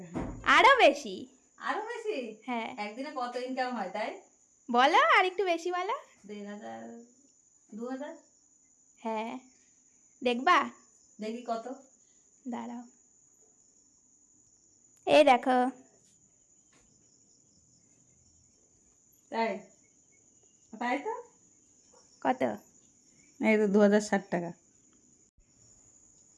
আরো বেশি। আরো বেশি? হ্যাঁ। একদিনে কত ইনকাম হয় তাই? বলো আর একটু বেশি বলো। 1500, 2000? হ্যাঁ। দেখবা? দেখি কত। দাঁড়াও, এই দেখো। তাই? তাই তো। কত? এই তো 2060 টাকা।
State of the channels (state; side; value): identical; both; correlation 1.00